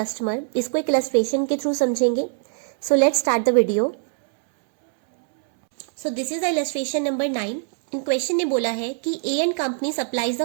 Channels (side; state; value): left; silent; 64 dB below the other